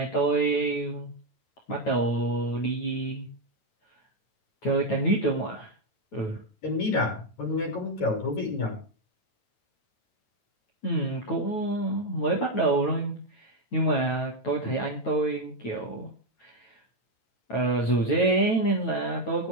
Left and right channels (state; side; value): late; right; 9.1 ms